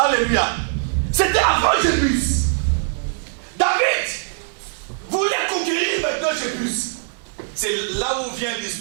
C'était avant Jébus. David voulait conquérir maintenant Jébus. C'est là où vient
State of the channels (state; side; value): silent; left; digital silence